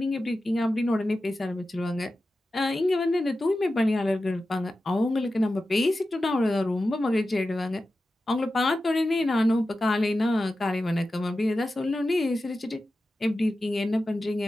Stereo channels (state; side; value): normal; both; correlation 0.93